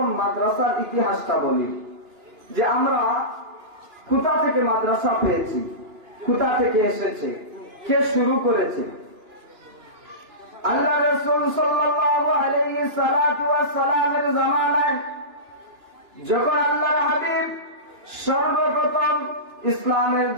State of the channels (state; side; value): late; left; 2.9 ms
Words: মাদ্রাসার ইতিহাসটা বলি যে আমরা কোথা থেকে মাদ্রাসা পেয়েছি, কোথা থেকে এসেছে, কে শুরু করেছে। আল্লাহ রাসূল সাল্লাল্লাহু আলাইহি সাল্লাতু ওয়াস সালামের জামানায় যখন আল্লাহর হাবিব সর্বপ্রথম ইসলামের